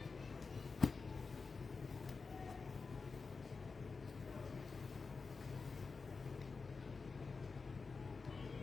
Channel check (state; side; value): quieter; right; 4.5 dB